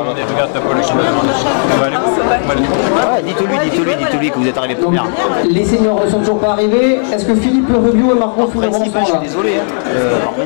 t'as pas le chemin. Dites-lui que vous êtes arrivé Donc, première. les seniors ne sont toujours pas arrivés. Est-ce que Philippe Rubio et Margot Fulleron sont Je suis là? désolé. En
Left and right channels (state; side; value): silent; right; digital silence